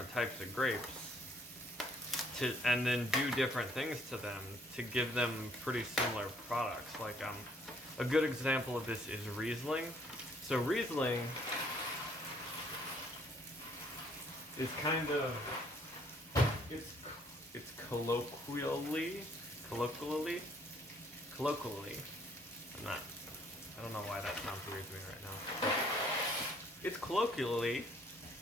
types of grapes and then do different things to them to give them pretty similar products. Like a good example of this is Riesling. So Riesling is kind of it's colloquially. I don't know why that sounds weird to me right now. It's commonly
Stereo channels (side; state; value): both; normal; correlation 0.63